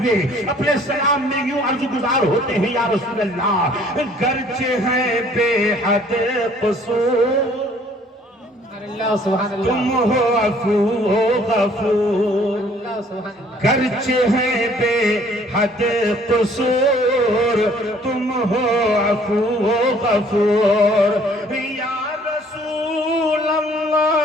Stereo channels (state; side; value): normal; both; correlation 0.58